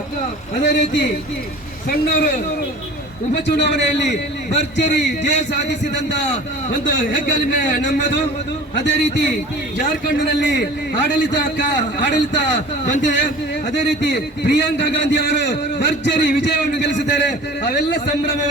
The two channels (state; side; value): normal; both; correlation 0.42